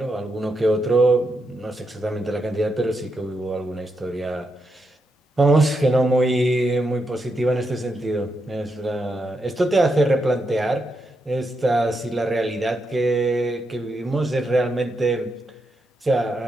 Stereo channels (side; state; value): both; normal; correlation 0.83